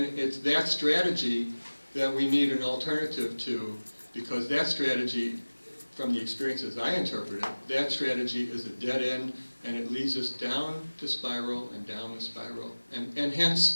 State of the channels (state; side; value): inverted; both; correlation -1.00